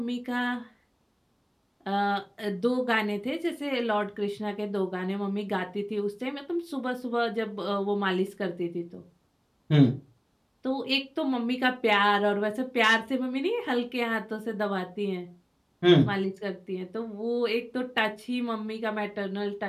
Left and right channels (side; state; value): both; identical; correlation 1.00